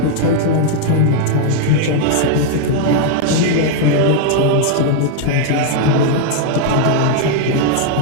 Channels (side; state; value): both; different; correlation 0.00